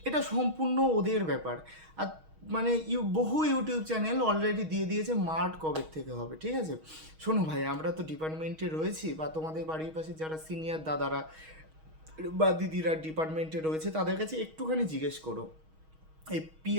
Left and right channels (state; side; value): late; left; 6.3 ms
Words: এটা সম্পূর্ণ ওদের ব্যাপার। আর মানে বহু ইউটিউব চ্যানেল অলরেডি দিয়ে দিয়েছে মাঠ কবে থেকে হবে। ঠিক আছে, শোনো ভাই, আমরা তো ডিপার্টমেন্টে রয়েছি, বা তোমাদের বাড়ির পাশে যারা সিনিয়র দাদারা বা দিদিরা ডিপার্টমেন্টে রয়েছে তাদের কাছে একটুখানি জিজ্ঞেস করো। এই